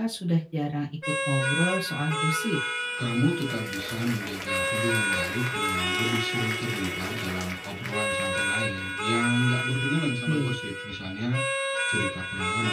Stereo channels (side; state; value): both; identical; correlation 1.00